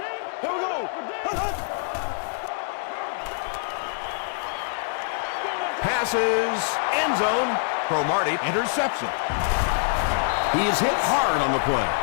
Passes, end zone. Cromartie, interception. He is hit hard on the play.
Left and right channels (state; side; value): silent; right; digital silence